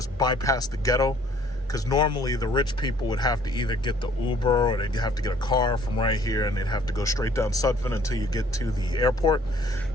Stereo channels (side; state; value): both; normal; correlation 0.58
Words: bypass the ghetto. Because normally the rich people would have to either get the Uber or they'd have to get a car from right here, and they'd have to go straight down Sutphin until you get to the airport.